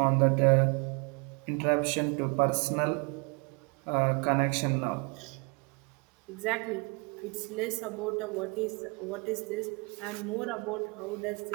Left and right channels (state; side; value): quieter; left; 31.1 dB